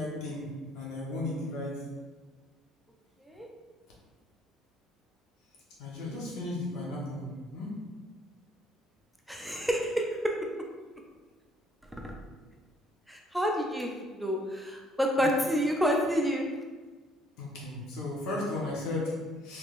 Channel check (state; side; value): normal; both; correlation 0.64